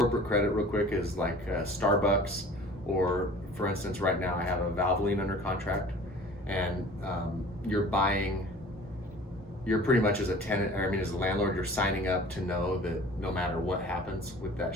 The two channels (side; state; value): both; normal; correlation 0.45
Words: credit real quick is like Starbucks, or for instance, right now I have a Valvoline under contract, and you're pretty much as a tenant, as a landlord, you're signing up to know that no matter what happens with that